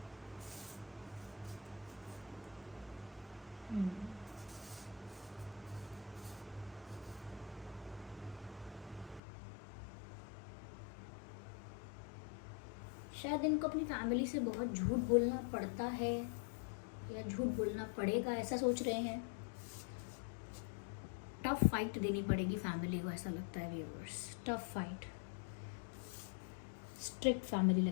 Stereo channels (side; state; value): right; drops out; at 9.2 s